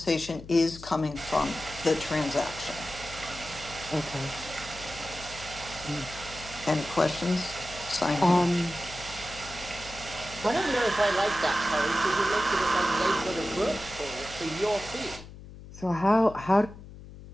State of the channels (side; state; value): left; noise; hum, 16 dB below the sound